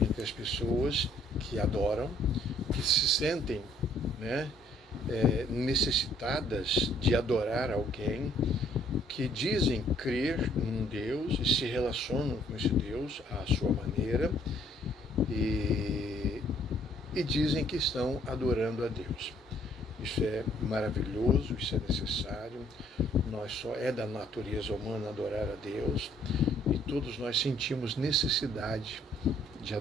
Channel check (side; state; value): both; normal; correlation 0.63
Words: as pessoas que adoram, que se sentem, necessitadas de adorar alguém, que dizem crer num Deus e se relacionam com esse Deus à sua maneira e dizem que estão adorando a Deus. Isso é maravilhoso, isso é necessário. É da natureza humana adorar a Deus e todos nós sentimos necessidade de